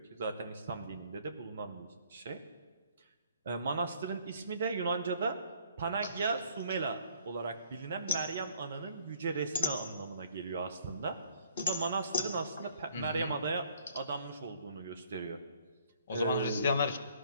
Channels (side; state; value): both; inverted; correlation -0.61